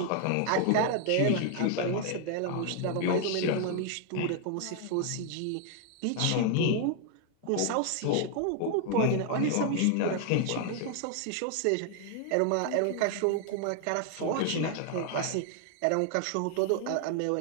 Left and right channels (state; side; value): different; both; correlation 0.00